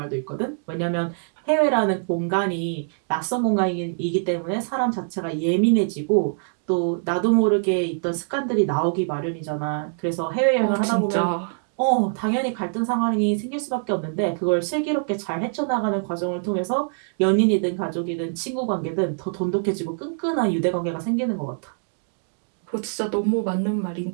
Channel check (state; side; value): silent; left; digital silence